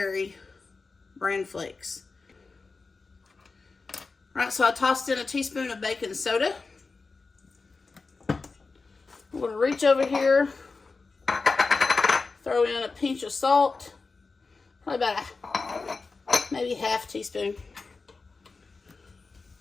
bran flakes. All right, so I tossed in a teaspoon of baking soda. I'm going to reach over here, throw in a pinch of salt, probably about maybe half teaspoon.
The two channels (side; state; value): right; quieter; 4.2 dB